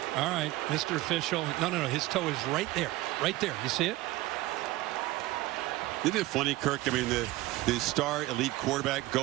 All right, Mr. Official. No. His toe is right there. Right there. You see it? Isn't it funny, Kirk? I mean, the star elite quarterback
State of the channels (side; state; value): left; quieter; 18.2 dB